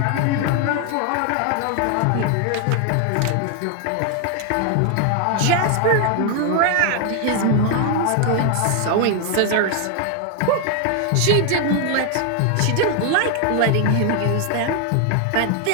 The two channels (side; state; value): both; different; correlation 0.00